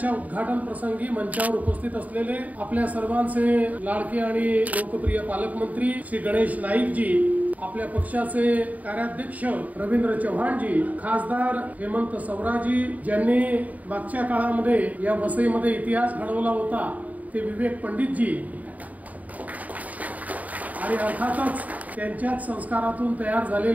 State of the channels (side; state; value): left; late; 0.073 ms